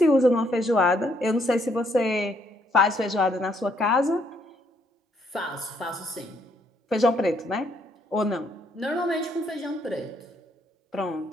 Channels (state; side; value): normal; both; correlation 0.71